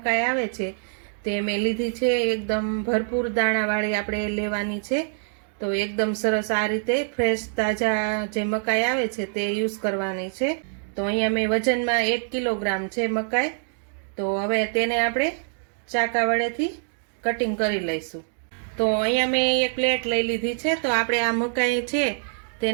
આવે છે તે મેં લીધી છે। એકદમ ભરપૂર દાણાવાળી આપણે લેવાની છે। તો એકદમ સરસ આ રીતે ફ્રેશ તાજા જે મકાઈ આવે છે તે યુઝ કરવાની છે। તો અહીંયા મેં વજનમાં 1 કિલોગ્રામ છે મકાઈ। તો હવે તેને આપણે ચાકા વડેથી કટિંગ કરી લઈશું। તો અહીંયા મેં એક પ્લેટ લઈ લીધી છે। તો આપણે આ મકાઈ છે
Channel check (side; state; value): left; silent; 60 dB below the other